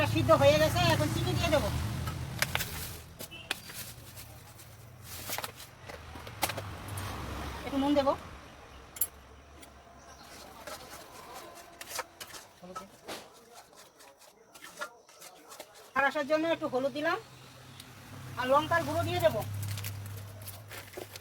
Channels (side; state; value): both; identical; correlation 1.00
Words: সিদ্ধ হয়ে গেছে, এখন চিনি দিয়ে দেবো। একটু নুন দেবো, আর আসার জন্য একটু হলুদ দিলাম, আর লঙ্কার গুঁড়ো দিয়ে দেবো।